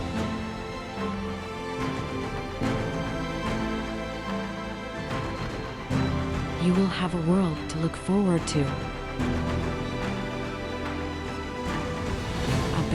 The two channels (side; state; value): both; identical; correlation 1.00